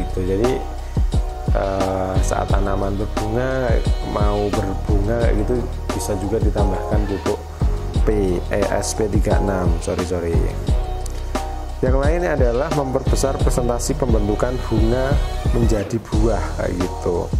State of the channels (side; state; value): both; identical; correlation 1.00